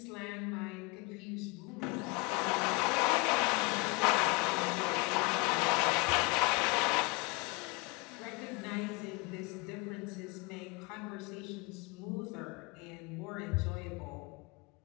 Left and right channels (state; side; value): quieter; right; 28.0 dB